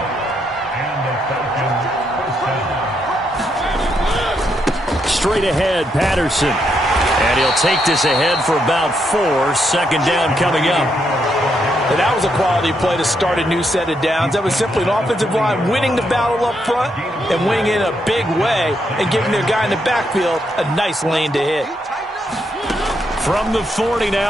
Straight ahead, Patterson. And he'll take this ahead for about 4. 2nd down coming up. And that was a quality play to start a new set of downs. That was simply an offensive line winning the battle up front and winning in a big way and giving their guy in the backfield a nice lane to hit. From the 40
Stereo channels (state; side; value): normal; both; correlation 0.78